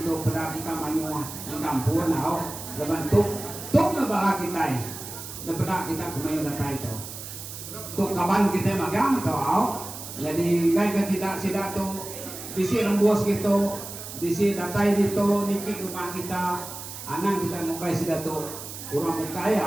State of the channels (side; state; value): right; noise; hiss, 11 dB below the sound